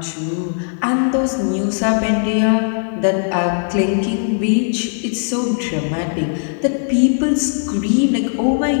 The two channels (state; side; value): silent; right; digital silence